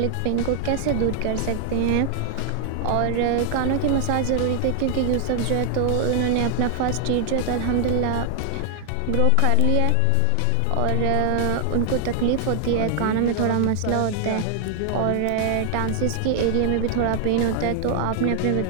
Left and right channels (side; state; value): both; different; correlation 0.00